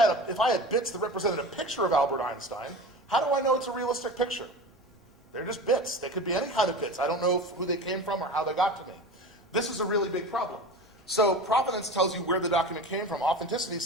bits that represented a picture of Albert Einstein, how do I know it's a realistic picture? They're just bits. They could be any kind of bits. I don't know who they came from or how they got to me. This is a really big problem. So provenance tells you where the document came from. Authenticity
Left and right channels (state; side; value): normal; both; correlation 0.32